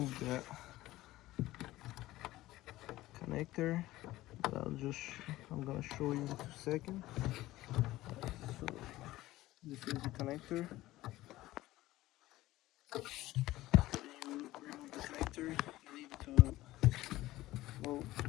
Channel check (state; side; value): quieter; right; 16.8 dB